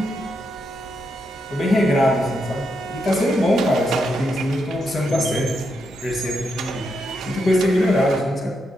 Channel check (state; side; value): normal; both; correlation 0.82